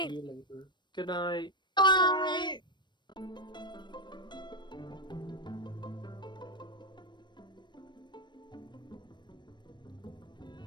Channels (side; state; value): right; late; 0.22 ms